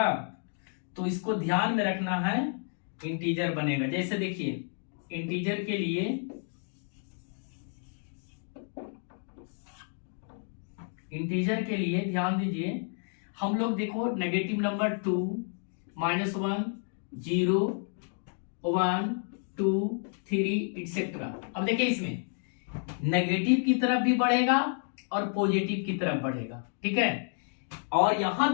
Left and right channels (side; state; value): right; silent; 57 dB below the other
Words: तो इसको ध्यान में रखना है, इंटीजर बनेगा। जैसे देखिए इंटीजर के लिए ध्यान दीजिए, हम लोग देखो नेगेटिव नंबर 2, -1, 0, 1, 2, 3 एटसेट्रा। अब देखिए इसमें नेगेटिव की तरफ भी बढ़ेगा और पॉजिटिव की तरफ बढ़ेगा, ठीक है। और यहां